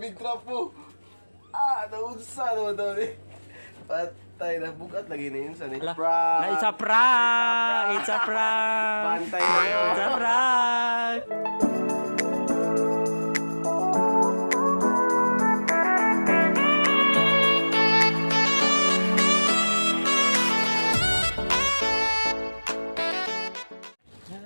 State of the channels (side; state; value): both; inverted; correlation -1.00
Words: trapo. Naunsa naman daw ni. Patay na bugat lagi na yun sa ni. It's a prank! It's a prank! Bantay na yun. It's a prank!